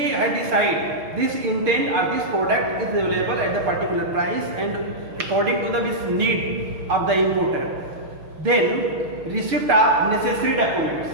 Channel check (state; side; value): late; left; 6.6 ms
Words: had decided this intent or this product is available at the particular price and according to the need of the importer. Then receipt of necessary documents.